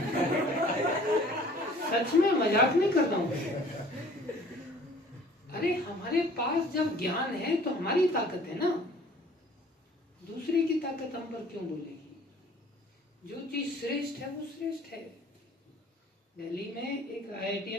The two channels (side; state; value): both; normal; correlation 0.52